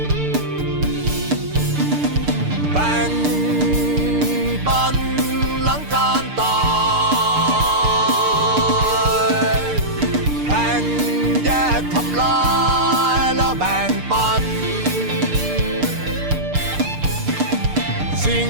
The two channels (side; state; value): left; late; 6.7 ms